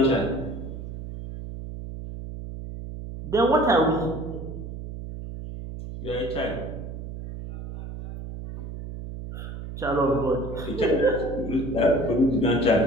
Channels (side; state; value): right; noise; hum, 9 dB below the sound